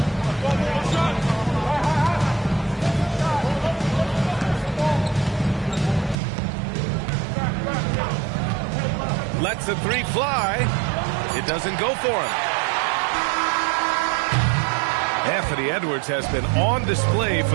Lets the three fly. It doesn't go for him. Anthony Edwards has been on display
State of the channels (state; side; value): drops out; left; at 6.2 s